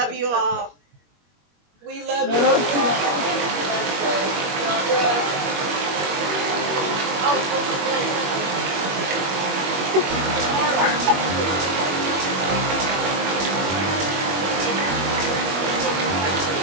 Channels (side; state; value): left; late; 21 ms